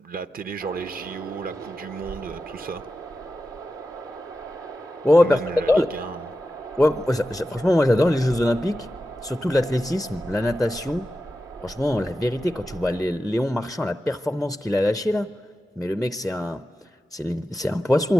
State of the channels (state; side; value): normal; both; correlation 0.91